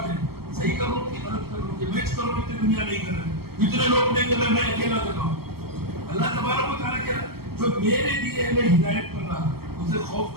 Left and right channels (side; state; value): left; late; 0.95 ms